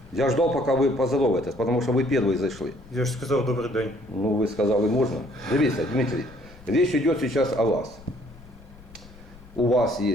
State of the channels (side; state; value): left; noise; rumble, 21 dB below the sound